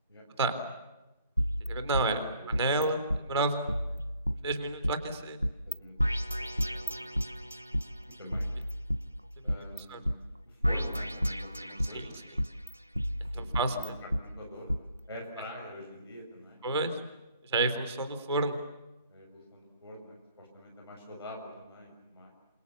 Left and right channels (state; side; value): inverted; both; correlation -0.67